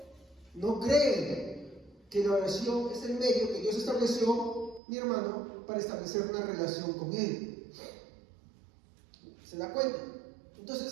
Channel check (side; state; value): left; drops out; at 4.8 s